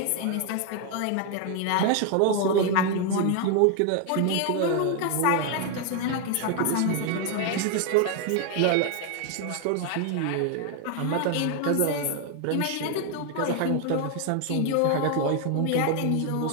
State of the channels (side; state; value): both; different; correlation 0.01